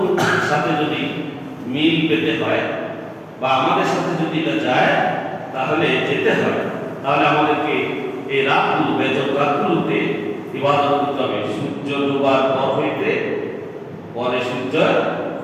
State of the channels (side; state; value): both; identical; correlation 1.00